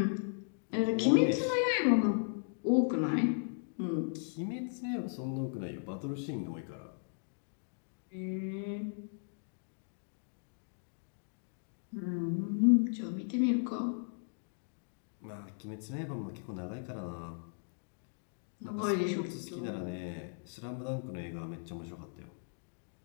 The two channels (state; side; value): silent; right; digital silence